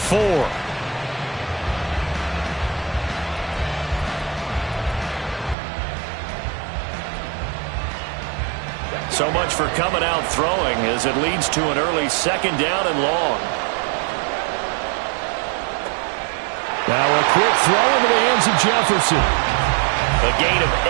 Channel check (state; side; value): drops out; left; at 5.6 s